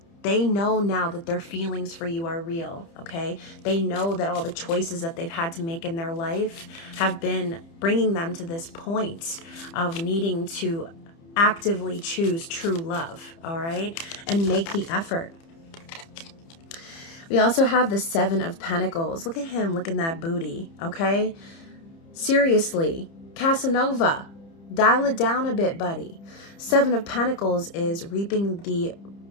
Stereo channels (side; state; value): right; late; 30 ms